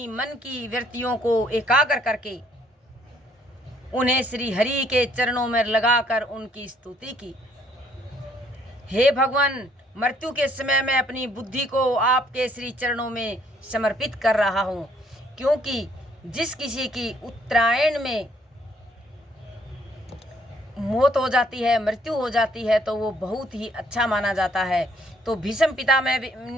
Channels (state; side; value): normal; both; correlation 0.65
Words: मन की वृत्तियों को एकाग्र करके उन्हें श्री हरि के चरणों में लगाकर उनकी स्तुति की। हे भगवान, मृत्यु के समय मैं अपनी बुद्धि को आपके श्री चरणों में समर्पित कर रहा हूँ, क्योंकि जिस किसी की उत्तरायण में मौत हो जाती है, मृत्यु हो जाती है, तो वो बहुत ही अच्छा माना जाता है। तो भीष्म पिता